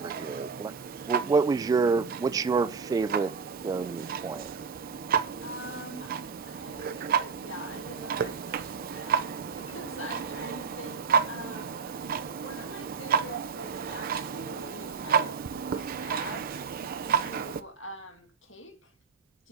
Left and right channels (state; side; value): quieter; left; 5.5 dB